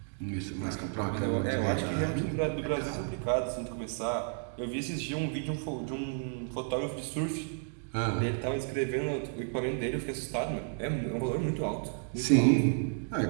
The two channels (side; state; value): left; silent; 56 dB below the other